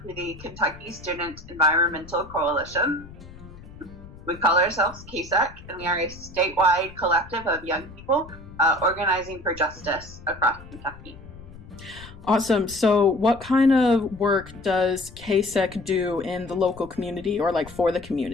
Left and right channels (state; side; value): noise; left; rumble, 18 dB below the sound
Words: for the Kentucky Student Environmental Coalition. We call ourselves KSEC, and we are a statewide collective of young people organizing for justice across Kentucky. Awesome. So what kind of work does KSEC do in the local community or like for the